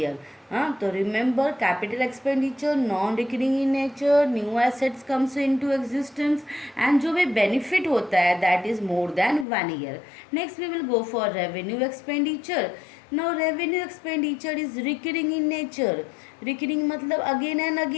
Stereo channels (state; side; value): drops out; right; at 9.5 s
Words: तो remember, capital expenditure non recurring in nature, new assets comes into existence, and जो भी बेनिफिट होता है that is more than 1 year. Next we will go for revenue expenditure. Now revenue expenditure is recurring in nature. Recurring मतलब again and